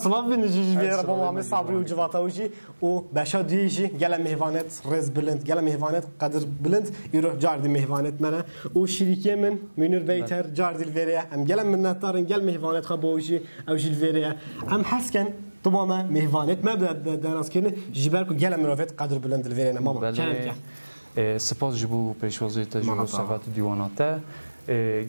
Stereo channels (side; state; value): both; inverted; correlation -1.00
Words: بینجی بیار با ما صبری و جواتاوجی و بشا دیجی گل مهوانت رز بلند گل مهوانت قدر بلند ایرو جاردی مهوانت منه و شریکی من منور بیتر جاردیل وریه ام گل منتارن گل مهوانت خبوجی او جیل وریه ام حسکن طبعا مهوانت ما درست کنه جبر کو گل مروفت قدر بلند الویرنا ماما سپاس جبو پیشوازی تجربه صفات دیواناته